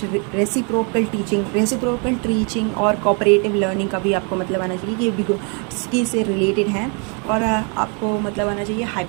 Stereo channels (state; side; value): quieter; left; 36.2 dB